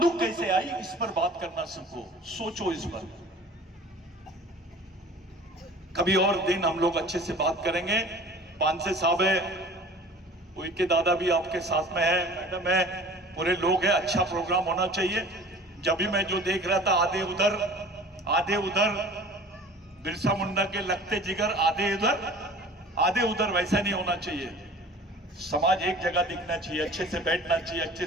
कैसे आई? इस पर बात करना सीखो, सोचो इस पर। कभी और दिन हम लोग अच्छे से बात करेंगे। पांसे साहब है, उनके दादा भी आपके साथ में है, मैडम है, पूरे लोग हैं। अच्छा प्रोग्राम होना चाहिए। जब भी मैं जो देख रहा था, आधे उधर बिरसा मुंडा के लगते जिगर, आधे उधर, वैसा नहीं होना चाहिए। समाज एक जगह दिखना चाहिए, अच्छे से बैठना चाहिए, अच्छे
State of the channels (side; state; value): both; normal; correlation 0.44